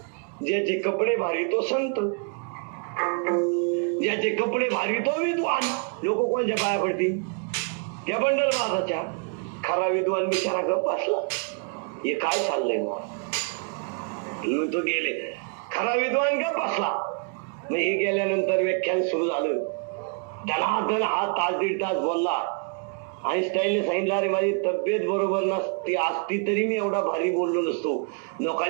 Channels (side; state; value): left; quieter; 38.9 dB